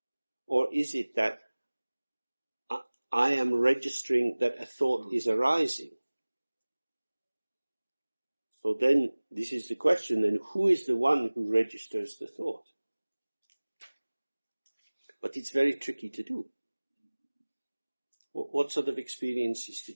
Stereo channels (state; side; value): inverted; both; correlation -1.00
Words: Or is it that I am registering that a thought is arising? So then, this is the question, then who is the one who registers the thought? But it's very tricky to do. What sort of experiences